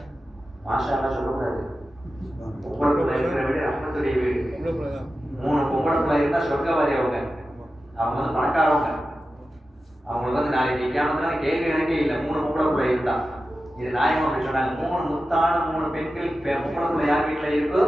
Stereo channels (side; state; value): both; normal; correlation 0.93